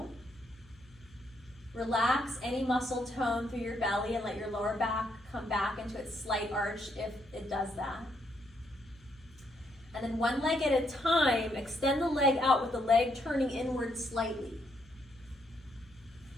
Relax any muscle tone through your belly and let your lower back come back into its slight arch if it does that. And then one leg at a time, extend the leg out with the leg turning inward slightly.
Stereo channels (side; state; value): left; noise; hum, 26 dB below the sound